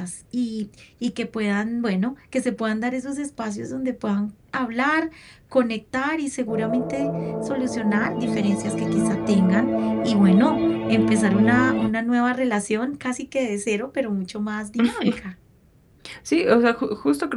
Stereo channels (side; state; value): both; identical; correlation 1.00